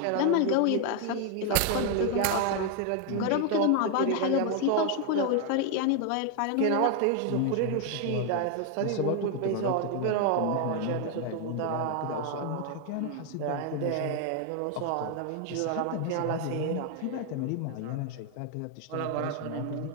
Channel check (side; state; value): both; different; correlation 0.00